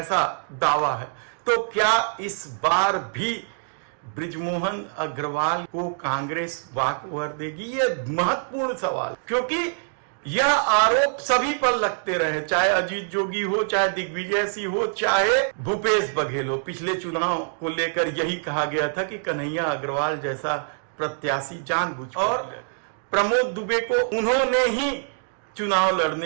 दावा है। तो क्या इस बार भी बृजमोहन अग्रवाल को कांग्रेस वाकओवर देगी? ये महत्वपूर्ण सवाल, क्योंकि यह आरोप सभी पर लगते रहे, चाहे अजीत जोगी हो, चाहे दिग्विजय सिंह हो, चाहे भूपेश बघेल हो। पिछले चुनाव को लेकर यही कहा गया था कि कन्हैया अग्रवाल जैसा प्रत्याशी जानबूझकर, और प्रमोद दुबे को उन्होंने ही चुनाव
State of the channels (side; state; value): left; silent; digital silence